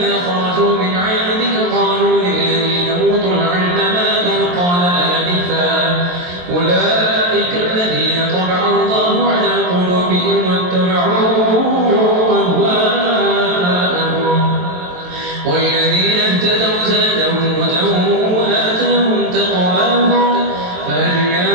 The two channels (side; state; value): left; late; 23 ms